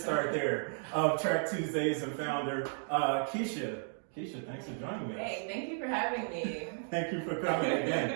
start there, of Track Tuesdays and founder, Keshia. Keshia, thanks for joining me. Hey, thank you for having me. Thank you for coming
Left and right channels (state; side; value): silent; left; 55 dB below the other